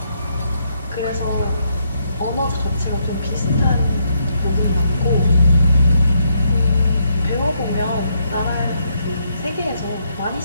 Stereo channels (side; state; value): both; inverted; correlation -0.76